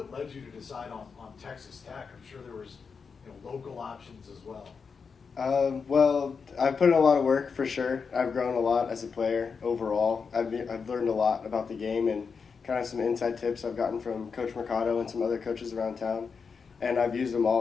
led you to decide on Texas Tech? I'm sure there was local options as well. Well, I've put in a lot of work for sure. I've grown a lot as a player overall. I've learned a lot about the game and kind of some inside tips I've gotten from Coach Mercado and some other coaches around town. And I've used them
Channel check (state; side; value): quieter; right; 5.5 dB